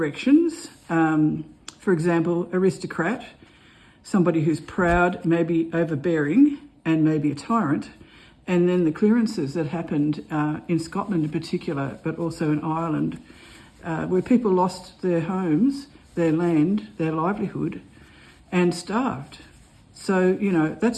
For example, aristocrat, somebody who's proud, maybe overbearing, and maybe a tyrant. And then the clearances that happened in Scotland in particular, but also in Ireland, where people lost their homes, their land, their livelihood, and starved. So,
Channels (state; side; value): identical; both; correlation 1.00